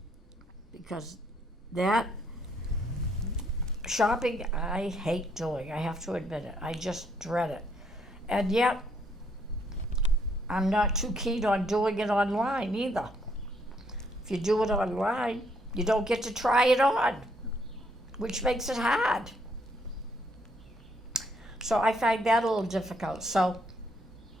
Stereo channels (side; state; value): both; normal; correlation 0.70